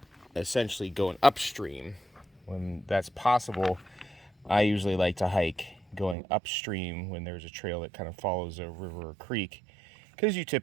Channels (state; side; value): drops out; left; at 6.2 s